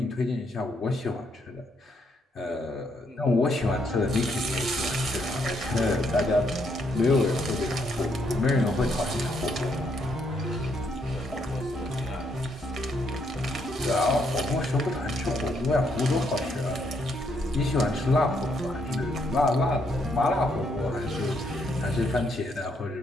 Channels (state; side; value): normal; both; correlation 0.74